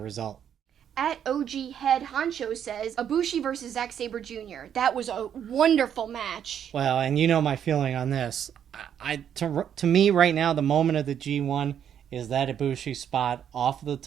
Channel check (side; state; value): left; quieter; 9.0 dB